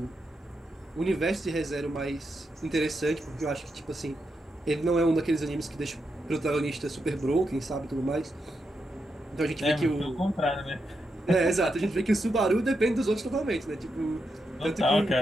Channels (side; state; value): both; normal; correlation 0.84